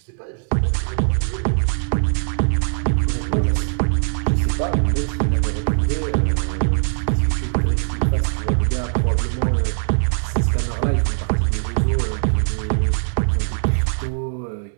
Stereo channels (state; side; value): silent; left; digital silence